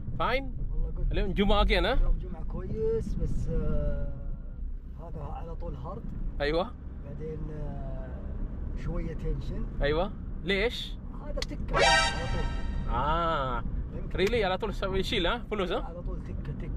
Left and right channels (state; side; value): identical; both; correlation 1.00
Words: Fine? والله good. اليوم جمعة again ها؟ اليوم جمعة كويس بس هذا على طول هارد أيوة بعدين شوية تنشن. أيوة ليش؟ هذا تكة على طول. ريلي على طول يشيل ها فلوس ها؟ على طول تكة